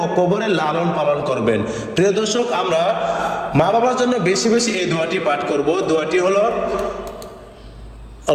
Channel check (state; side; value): identical; both; correlation 1.00